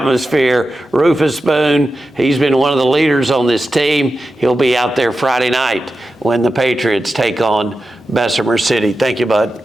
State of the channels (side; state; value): both; normal; correlation 0.91